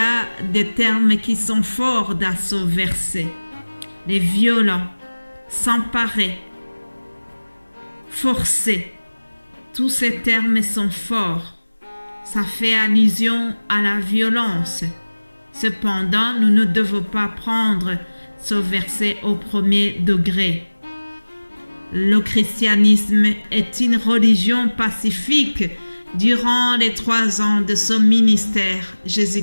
des termes qui sont forts dans ce verset. Les violents, s'emparer, forcer, tous ces termes sont forts. Ça fait allusion à la violence. Cependant, nous ne devons pas prendre ce verset au premier degré. Le christianisme est une religion pacifique. Durant les 3 ans de son ministère,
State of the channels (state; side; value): inverted; both; correlation -1.00